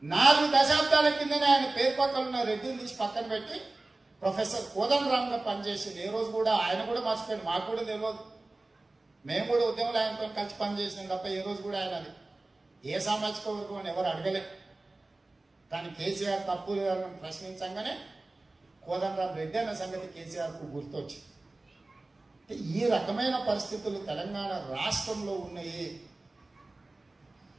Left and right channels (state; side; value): quieter; left; 3.0 dB